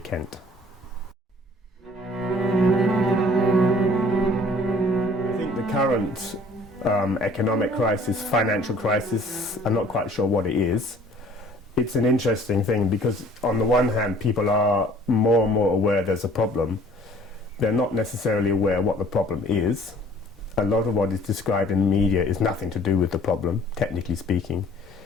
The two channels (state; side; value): normal; both; correlation 0.53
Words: I think the current economic crisis, financial crisis, I'm not quite sure what it is. It's an interesting thing because on the one hand people are more and more aware there's a problem. They're not necessarily aware what the problem is. A lot of what is described in the media is nothing to do with the problem, technically speaking.